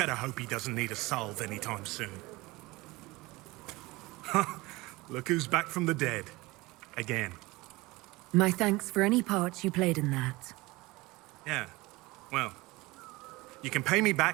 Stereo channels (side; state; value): left; quieter; 21.6 dB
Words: hope he doesn't need a salve anytime soon. Look who's back from the dead. Again. My thanks for any part you played in that. Yeah. Well, you can pay me